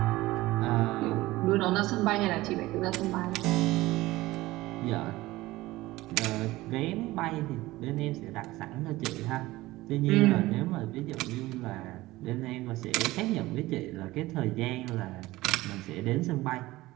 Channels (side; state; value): left; quieter; 18.4 dB